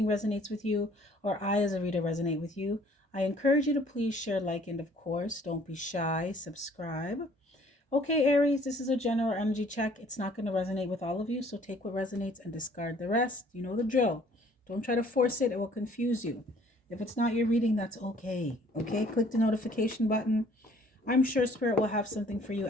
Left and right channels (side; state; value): both; normal; correlation 0.57